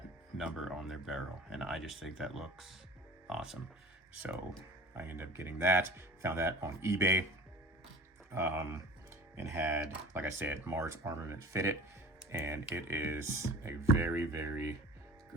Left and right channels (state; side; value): normal; both; correlation 0.41